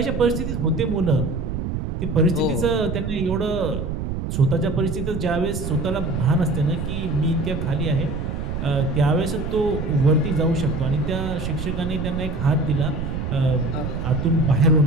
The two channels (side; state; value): right; noise; rumble, 4 dB below the sound